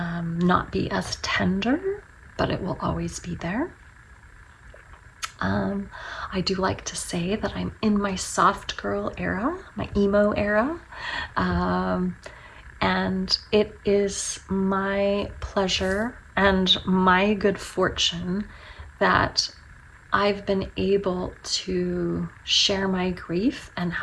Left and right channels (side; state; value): both; identical; correlation 1.00